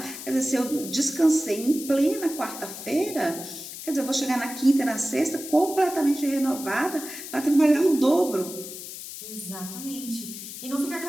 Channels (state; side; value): noise; left; hiss, 11 dB below the sound